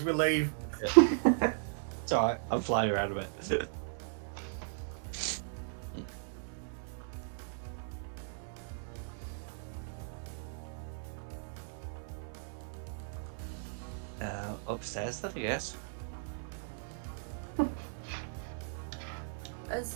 we leave. It's alright, I'm flying around a bit. Upstairs then, I guess.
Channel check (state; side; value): silent; left; 53 dB below the other